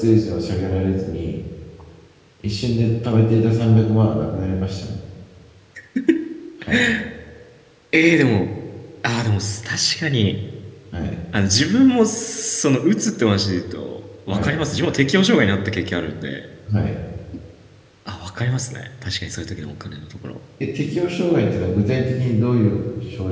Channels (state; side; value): identical; both; correlation 1.00